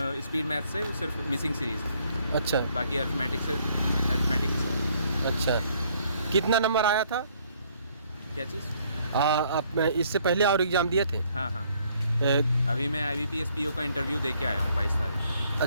स्पीड मैथ से सिर्फ मिसिंग सीरीज, अच्छा बाकी अर्थमेटिक से। अच्छा। कितना नंबर आया था? क्या चीज़? आप इससे पहले और एग्ज़ाम दिए थे? हाँ हाँ, ए, अभी मैं IBPS PO का इंटरव्यू दे के आया हूँ 22 तारीख।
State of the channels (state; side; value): inverted; both; correlation -0.66